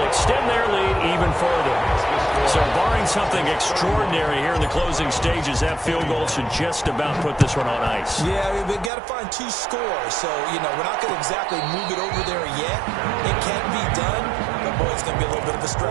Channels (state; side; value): drops out; left; at 8.9 s